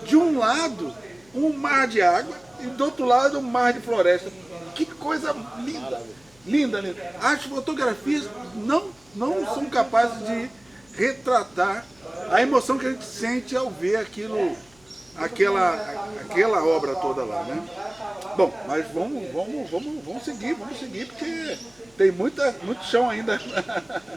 De um lado, um mar de água, e do outro lado, um mar de floresta. Que coisa linda. Linda. As fotografias não são capazes de retratar a emoção que a gente sente ao ver aquela obra toda lá, né? Bom, mas vamos seguir, porque tem muito chão ainda.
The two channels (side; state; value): left; noise; hum, 30 dB below the sound